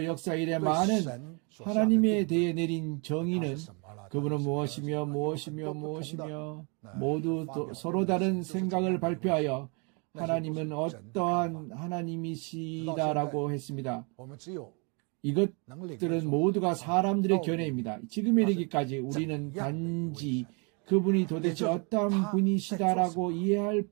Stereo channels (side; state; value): left; quieter; 33.9 dB